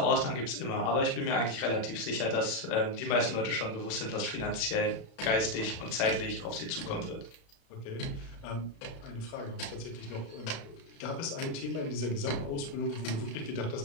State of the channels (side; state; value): right; late; 36 ms